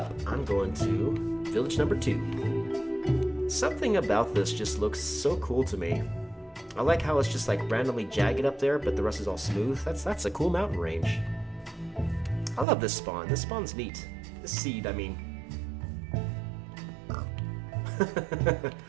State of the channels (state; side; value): drops out; left; at 12.7 s